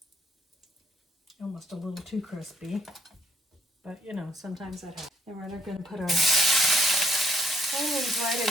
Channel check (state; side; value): normal; both; correlation 0.69